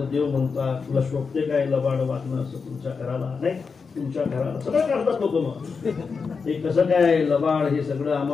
देव म्हणतात, तुला शोभते काय लबाड वागणं असं तुमच्या घराला. नाही, तुमच्या घराला सगळं करतात लोक. मग हे कसं काय लबाड, हे सगळं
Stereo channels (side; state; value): right; quieter; 5.2 dB